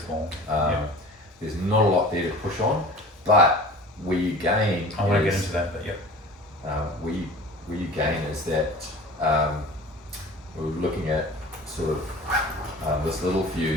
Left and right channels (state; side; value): normal; both; correlation 0.40